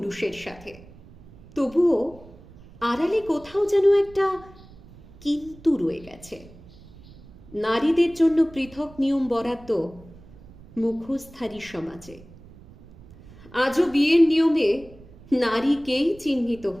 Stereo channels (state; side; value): noise; right; rumble, 22 dB below the sound